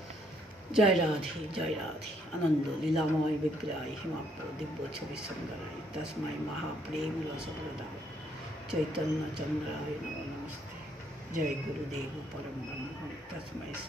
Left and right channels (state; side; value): normal; both; correlation 0.70